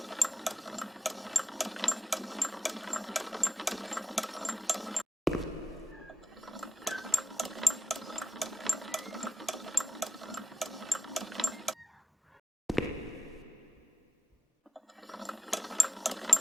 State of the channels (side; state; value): both; normal; correlation 0.93